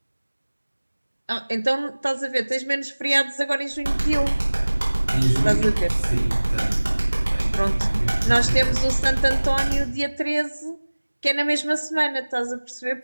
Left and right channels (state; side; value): inverted; both; correlation -1.00